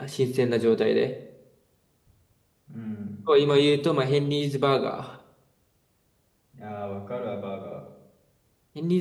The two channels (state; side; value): identical; both; correlation 1.00